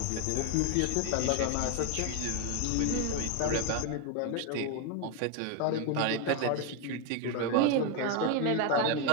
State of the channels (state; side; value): different; both; correlation 0.01